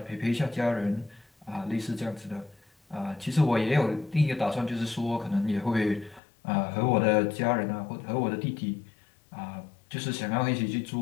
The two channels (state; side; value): drops out; right; at 6.2 s